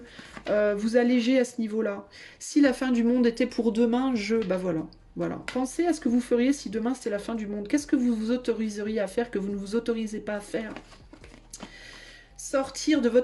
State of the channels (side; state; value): both; identical; correlation 1.00